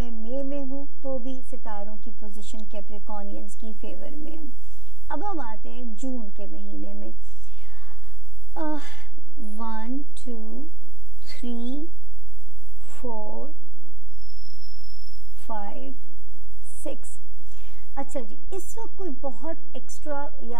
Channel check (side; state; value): left; late; 3.4 ms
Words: मई में हूँ तो भी सितारों की पोजीशन कैप्रिकॉनियंस की फेवर में है। अब हम आते हैं जून के महीने में। 1 2 3 4 5 6। अच्छा जी, इस वक्त कोई बहुत एक्स्ट्रा